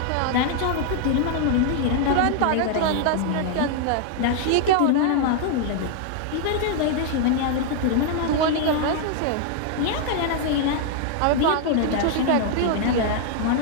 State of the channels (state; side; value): different; both; correlation 0.00